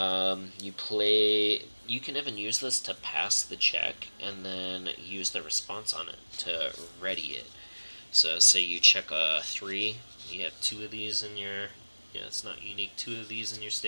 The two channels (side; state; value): both; inverted; correlation -1.00